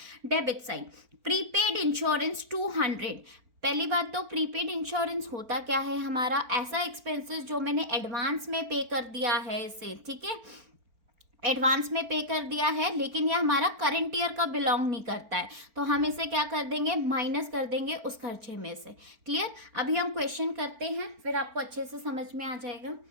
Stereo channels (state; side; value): late; left; 4.4 ms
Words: debit side. Prepaid insurance 200। पहली बात तो प्रीपेड इंश्योरेंस होता क्या है? हमारा ऐसा एक्सपेंसेस जो मैंने एडवांस में पे कर दिया है इसे। ठीक है, एडवांस में पे कर दिया है, लेकिन ये हमारा करंट ईयर का बिलोंग नहीं करता है, तो हम इसे क्या कर देंगे? माइनस कर देंगे उस खर्चे में से। क्लियर? अभी हम क्वेश्चन करते हैं, फिर आपको अच्छे से समझ में आ जाएगा।